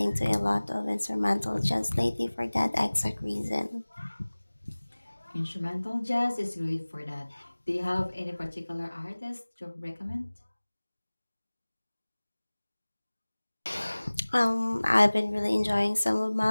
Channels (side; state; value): both; inverted; correlation -1.00